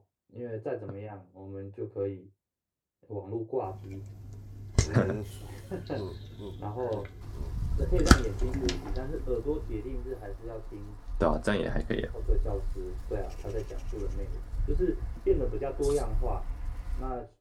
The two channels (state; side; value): identical; both; correlation 1.00